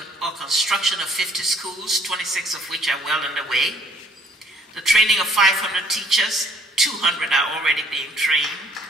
or construction of 50 schools, 26 of which are well underway. The training of 500 teachers, 200 are already being trained.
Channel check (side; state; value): both; normal; correlation 0.61